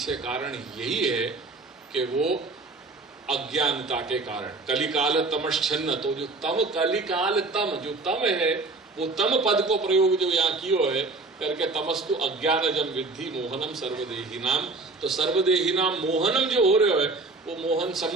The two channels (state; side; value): quieter; left; 3.5 dB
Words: कारण यही है कि वो अज्ञानता के कारण कलिकाल तमश्चन्न, तो जो तम कलिकाल तम जो तम है वो तम पद को प्रयोग जो यहाँ कियो है करके तमस्तु अज्ञानजम विद्धि मोहनम सर्वदेहिनाम। तो सर्वदेहिनाम मोहनम जो हो रहे है वो मोहन